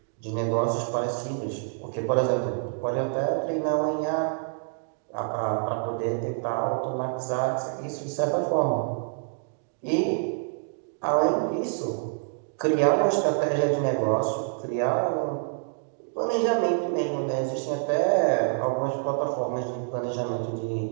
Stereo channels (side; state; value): left; silent; digital silence